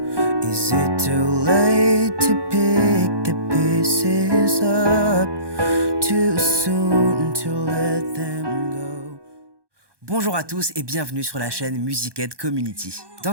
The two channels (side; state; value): left; late; 1.2 ms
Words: Is it too late to pick the pieces up? Too soon to let them go? Bonjour à tous et bienvenue sur la chaîne Musicaid Community.